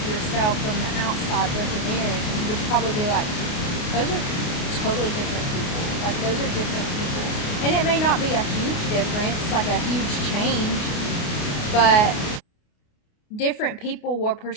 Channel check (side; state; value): right; late; 28 ms